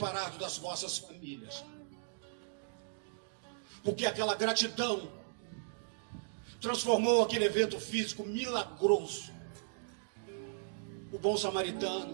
das vossas famílias, porque aquela gratidão transformou aquele evento físico milagroso. O bom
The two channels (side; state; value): left; silent; digital silence